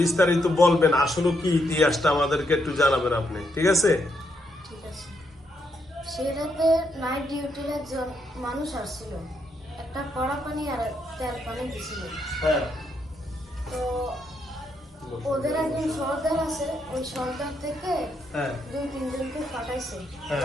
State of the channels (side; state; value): both; normal; correlation 0.78